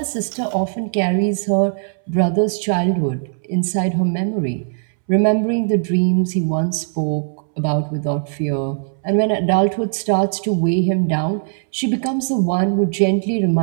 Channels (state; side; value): silent; left; 66 dB below the other